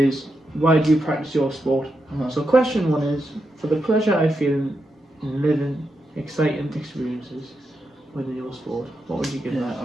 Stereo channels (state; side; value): normal; both; correlation 0.85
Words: why do you practice your sport? So question 1 is, for the pleasure I feel in living exciting experiences within your sport, what would you give that?